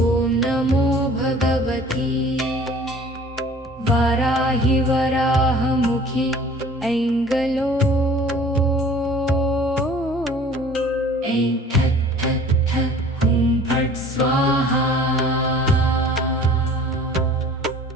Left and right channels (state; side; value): normal; both; correlation 0.48